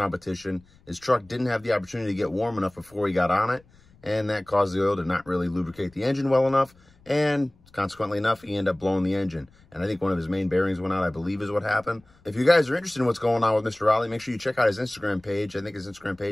His truck didn't have the opportunity to get warm enough before he got on it, and that caused the oil to not really lubricate the engine well enough, and consequently enough, he ended up blowing the engine. And I think one of his main bearings went out, I believe is what happened. If you guys are interested in what's going on with Mr. Raleigh, make sure you check out his Instagram page. I think his Instagram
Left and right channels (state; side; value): noise; left; rumble, 29 dB below the sound